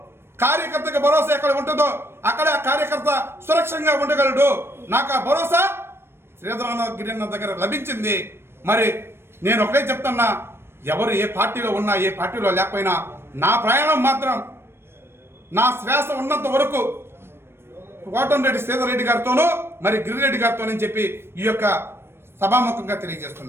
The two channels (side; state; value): left; late; 0.12 ms